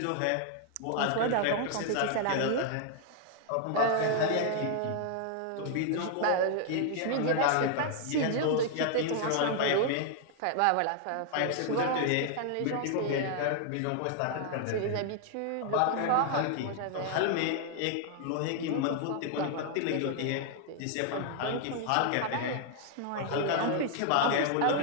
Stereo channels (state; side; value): different; both; correlation 0.00